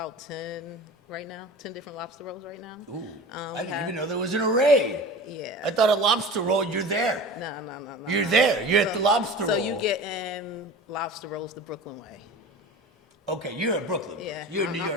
10 right now, 10 different lobster rolls right now. Ooh, I didn't even know there was an array. Yeah. I thought a lobster roll, you're there. No. You're there. You're at the lobster roll. So you get in lobster rolls the Brooklyn way. Okay, you're in Brooklyn. Yeah. You're in New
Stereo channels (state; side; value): normal; both; correlation 0.36